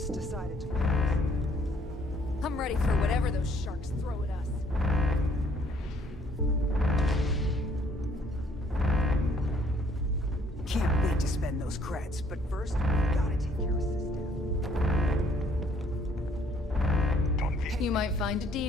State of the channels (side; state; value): both; normal; correlation 0.63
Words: decided to... I'm ready for whatever those sharks throw at us. Can't wait to spend those creds, but first, we gotta take care of SysDef. You might find a